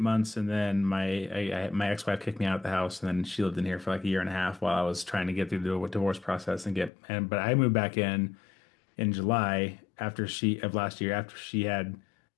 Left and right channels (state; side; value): drops out; right; at 6.9 s